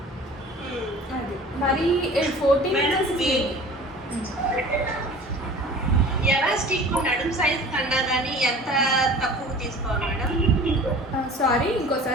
అది మరి 14 ఎలాస్టిక్ నడుం సైజ్ కన్నా కానీ ఎంత తక్కువ తీసుకోవాలి మేడం? సారీ,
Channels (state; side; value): normal; both; correlation 0.43